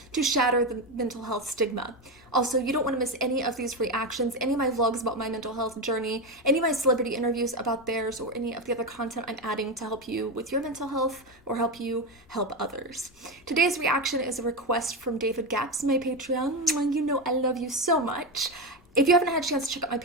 to shatter the mental health stigma. Also, you don't want to miss any of these reactions, any of my vlogs about my mental health journey, any of my celebrity interviews about theirs, or any of the other content I'm adding to help you with your mental health or help you help others. Today's reaction is a request from David Gaps, my Patreon. You know I love you so much. If you haven't had a chance to check out my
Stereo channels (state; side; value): normal; both; correlation 0.14